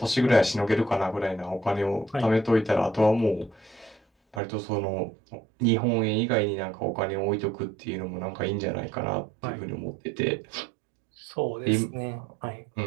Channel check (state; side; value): drops out; left; at 4.4 s